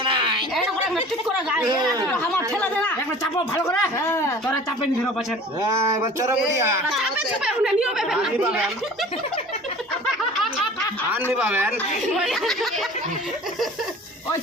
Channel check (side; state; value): both; normal; correlation 0.44